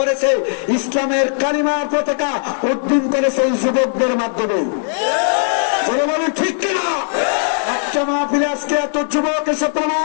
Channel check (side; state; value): right; silent; digital silence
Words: ইসলামের কালিমার পতাকা উড্ডীন করেছে এই যুবকদের মাধ্যমে, ঠিক কিনা? একটা মাহফিলে আজকে এত যুবক এসে